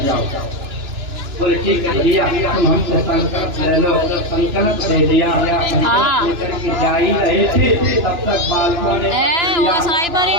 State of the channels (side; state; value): left; late; 2.9 ms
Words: जाओ। बोले ठीक है भैया तुम हमसे संकल्प ले लो। संकल्प दे दिया, लेकर के जा ही रहे थे तब तक बालकों ने